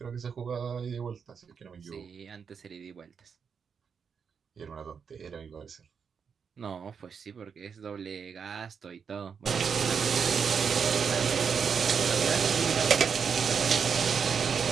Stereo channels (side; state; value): left; quieter; 6.5 dB